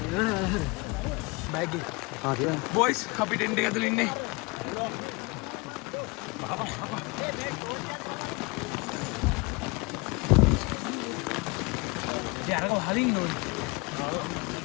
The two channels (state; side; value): quieter; right; 26.6 dB